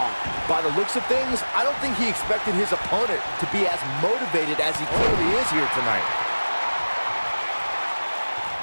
By the looks of things, I don't think he expected his opponent to be as motivated as he clearly is here tonight.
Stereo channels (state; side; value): inverted; both; correlation -1.00